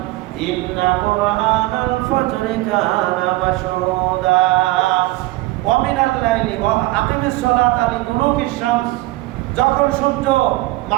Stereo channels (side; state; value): left; quieter; 19.3 dB